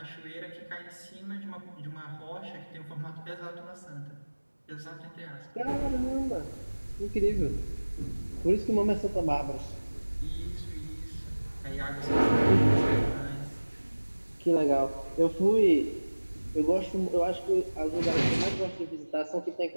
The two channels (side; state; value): both; inverted; correlation -1.00